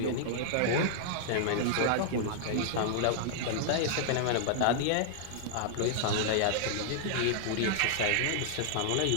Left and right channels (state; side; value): different; both; correlation -0.01